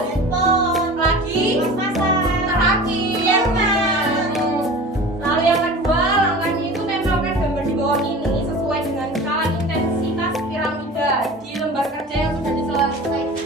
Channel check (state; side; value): normal; both; correlation 0.38